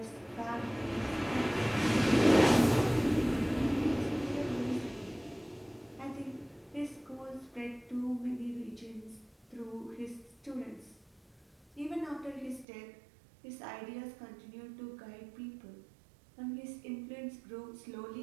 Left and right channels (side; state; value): left; drops out; at 12.7 s